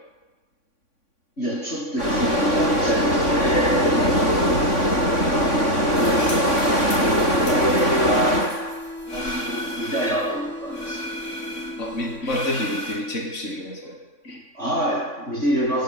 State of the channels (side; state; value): right; late; 3.6 ms